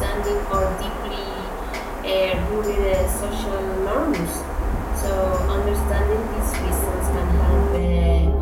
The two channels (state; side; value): identical; both; correlation 1.00